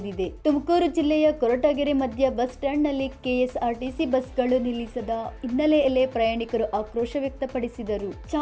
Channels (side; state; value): both; identical; correlation 1.00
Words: ತುಮಕೂರು ಜಿಲ್ಲೆಯ ಕೊರಟಗೆರೆ ಮಧ್ಯ ಬಸ್ ಸ್ಟ್ಯಾಂಡ್ನಲ್ಲಿ ಕೆಎಸ್ಆರ್ಟಿಸಿ ಬಸ್ಗಳು ನಿಲ್ಲಿಸದ ಹಿನ್ನೆಲೆಯಲ್ಲಿ ಪ್ರಯಾಣಿಕರು ಆಕ್ರೋಶ ವ್ಯಕ್ತಪಡಿಸಿದರು.